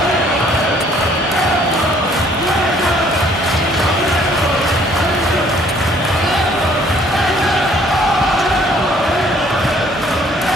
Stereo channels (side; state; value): both; normal; correlation 0.60